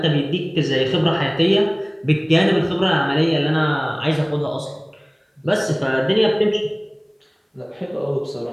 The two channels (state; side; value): identical; both; correlation 1.00